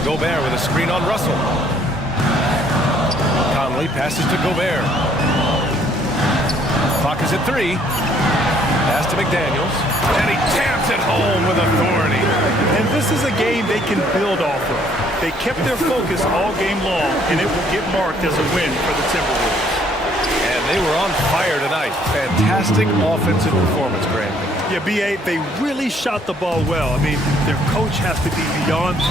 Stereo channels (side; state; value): both; normal; correlation 0.63